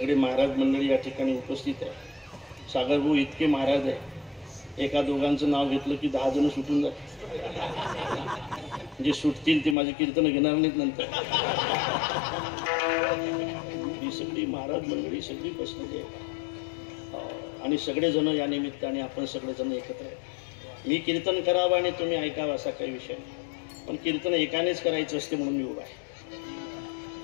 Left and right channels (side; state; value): right; drops out; at 9.8 s